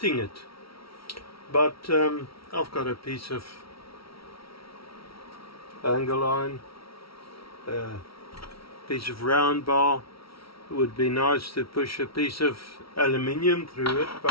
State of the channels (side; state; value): right; late; 0.75 ms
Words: it. But I've got a piece of angle iron, a piece of round bar. It would be nice to push a piece of aluminium through it,